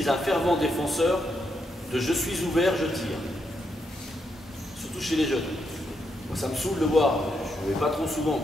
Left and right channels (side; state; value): both; normal; correlation 0.80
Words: un fervent défenseur de je suis ouvert, je tire. Surtout chez les jeunes. Moi, ça me saoule de voir, je ne vais pas trop souvent,